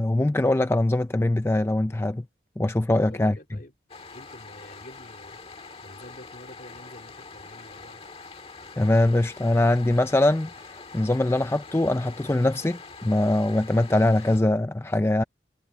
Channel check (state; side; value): normal; both; correlation 0.91